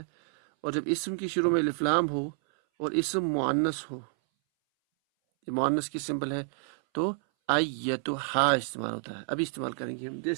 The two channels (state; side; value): silent; left; 58 dB below the other